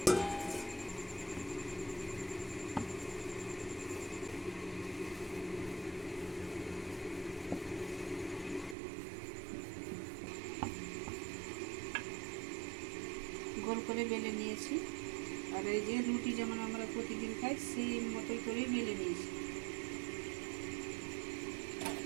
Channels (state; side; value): drops out; left; at 8.8 s